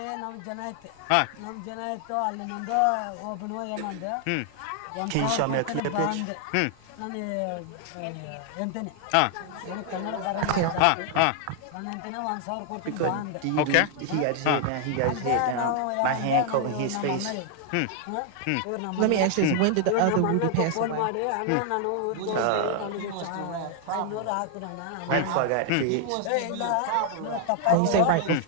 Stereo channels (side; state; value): both; different; correlation 0.00